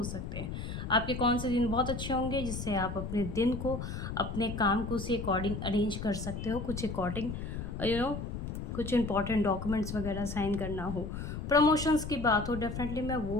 सकते हैं। आपके कौन से दिन बहुत अच्छे होंगे जिससे आप अपने दिन को, अपने काम को उसी अकॉर्डिंग अरेंज कर सकते हो। कुछ अकॉर्डिंग कुछ इंपॉर्टेंट डॉक्यूमेंट्स वगैरह साइन करना हो, प्रमोशंस की बात हो, डेफिनेटली मैं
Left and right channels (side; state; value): left; noise; rumble, 6 dB below the sound